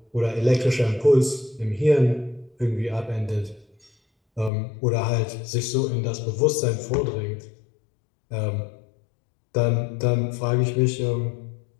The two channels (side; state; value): right; drops out; at 4.5 s